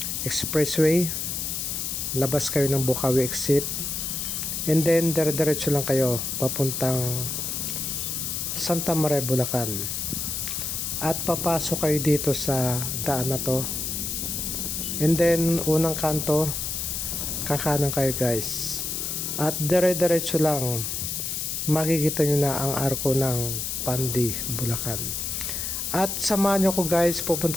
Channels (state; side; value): noise; left; hiss, 2 dB below the sound